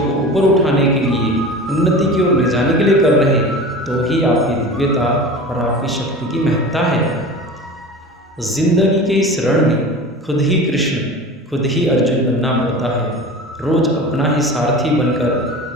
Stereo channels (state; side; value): normal; both; correlation 0.34